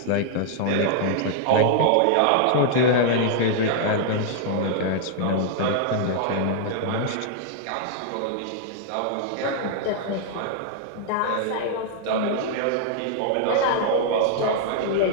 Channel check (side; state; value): both; different; correlation -0.01